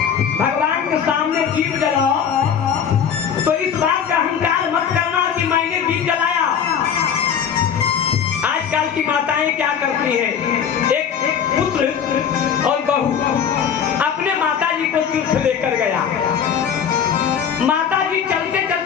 भगवान के सामने दीप जलाओ तो इस बात का अहंकार मत करना कि मैंने दीप जलाया। आजकल की माताएं क्या करती हैं? एक पुत्र और बहू अपने माता जी को तीर्थ लेकर गया। माता जी चलते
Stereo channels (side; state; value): right; quieter; 7.8 dB